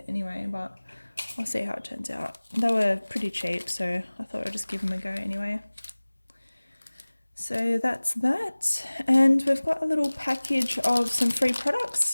anyway, but I'll see how it turns out. They were pretty cheap, so I thought I'd just give them a go anyway. So that's that, and we've got a little package of some free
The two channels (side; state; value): both; inverted; correlation -1.00